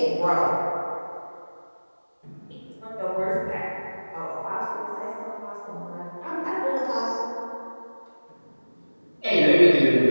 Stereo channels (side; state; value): both; inverted; correlation -1.00